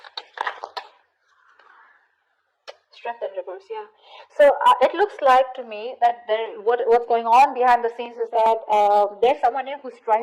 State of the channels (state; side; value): identical; both; correlation 1.00